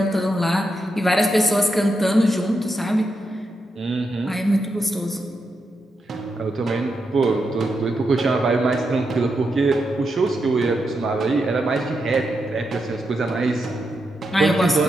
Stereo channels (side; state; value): both; normal; correlation 0.85